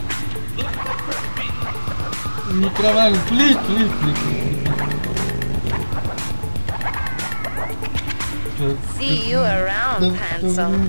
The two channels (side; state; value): both; inverted; correlation -1.00